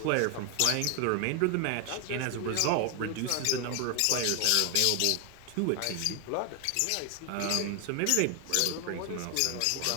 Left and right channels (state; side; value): different; both; correlation 0.01